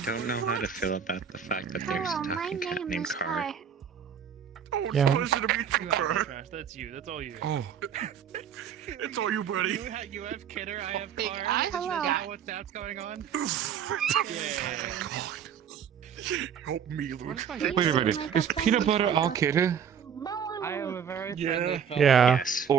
know how to feel about the fact that there's a talking cat named Car. Yeah. Pleasure to meet you, Kurt. That's you. That's all you. Oh. It's all you, buddy. You have Kidder, I have Car. Hello. What's that's going on? Help me, Luke. Wait a minute. Is peanut butter our kidder? I am a very friendly fellow. Yeah. Yes.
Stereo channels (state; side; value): quieter; left; 7.9 dB